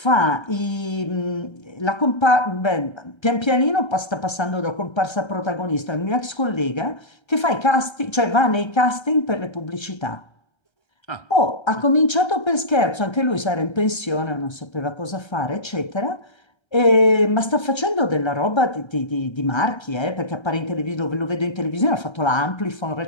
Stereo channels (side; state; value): right; late; 1.3 ms